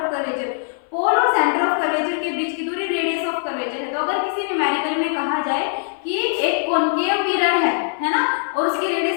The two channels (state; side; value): silent; right; 59 dB below the other